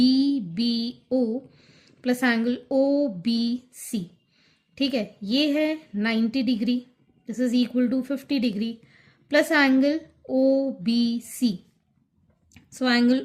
plus angle OBC. ठीक है, ये है 90 degree, this is equal to 50 degree plus angle OBC. So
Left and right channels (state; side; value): identical; both; correlation 1.00